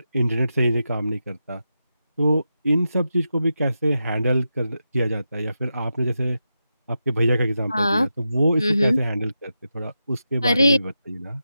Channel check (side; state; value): both; inverted; correlation -0.89